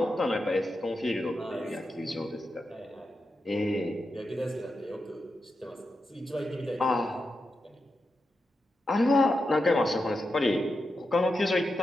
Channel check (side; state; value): both; normal; correlation 0.88